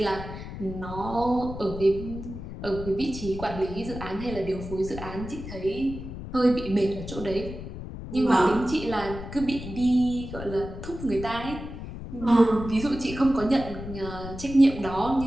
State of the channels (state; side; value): noise; left; rumble, 10 dB below the sound